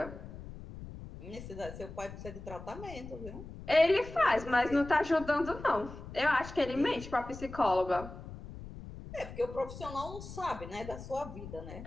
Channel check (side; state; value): left; noise; rumble, 12 dB below the sound